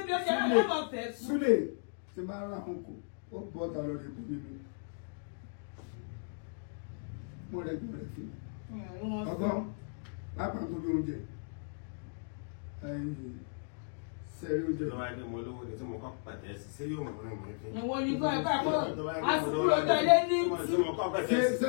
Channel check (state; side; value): silent; right; digital silence